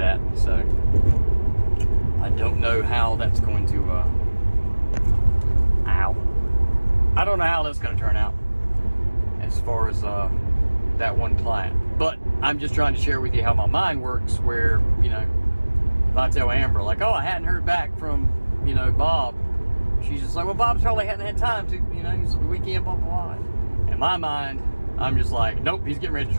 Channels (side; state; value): both; inverted; correlation -1.00